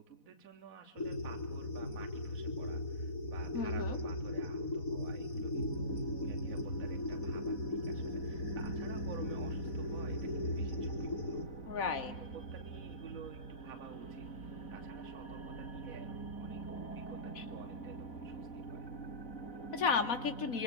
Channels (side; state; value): right; late; 4.1 ms